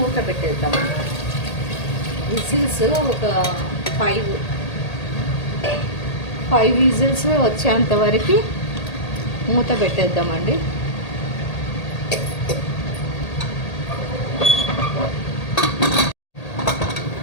పెట్టేద్దాం. విజిల్స్ ఒక 5 విజిల్స్ వచ్చేంత వరకు మూత పెట్టేద్దామండి.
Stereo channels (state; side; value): late; right; 1.8 ms